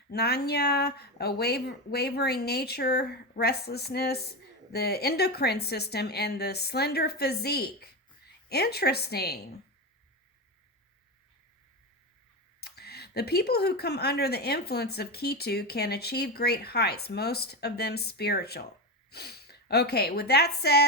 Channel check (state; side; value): normal; both; correlation 0.17